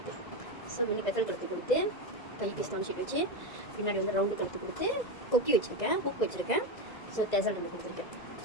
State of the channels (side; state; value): right; late; 1.9 ms